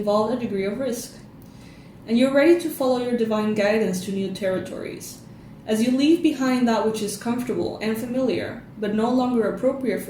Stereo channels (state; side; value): identical; both; correlation 1.00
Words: a degree of risk. And you're ready to follow your divine guidance to new territories. As you leave behind that which is comfortable and familiar, but no longer appropriate